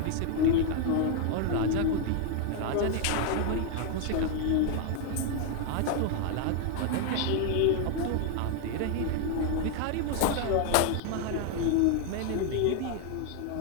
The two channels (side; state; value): both; different; correlation 0.00